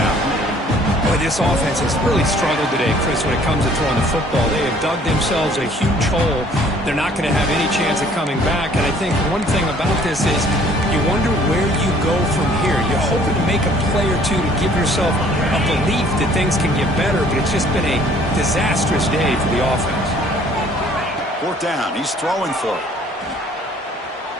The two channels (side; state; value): both; normal; correlation 0.57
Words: Boy, this offense has really struggled today, Chris, when it comes to throwing the football. They have dug themselves a huge hole. They're not going to have any chance of coming back. And I think one thing about this is you wonder where you go from here. You're hoping to make a play or two to give yourself a belief that things can get better, but it's just been a disastrous day for the offense. Fourth down. He's throwing for it.